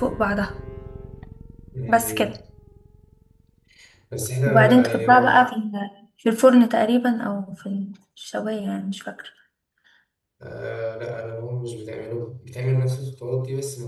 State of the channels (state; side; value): identical; both; correlation 1.00